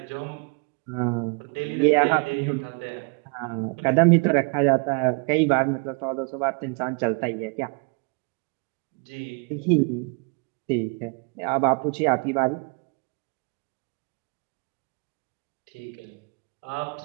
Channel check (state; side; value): quieter; left; 34.0 dB